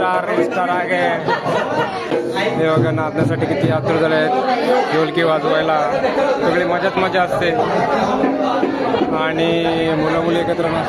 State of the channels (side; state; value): both; identical; correlation 1.00